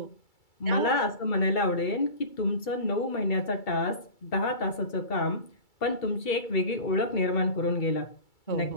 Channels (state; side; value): late; right; 2.3 ms